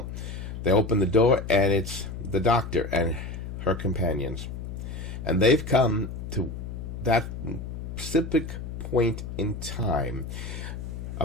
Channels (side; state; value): left; noise; hum, 7 dB below the sound